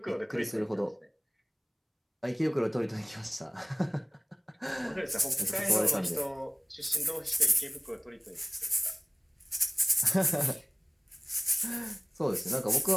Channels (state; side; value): identical; both; correlation 1.00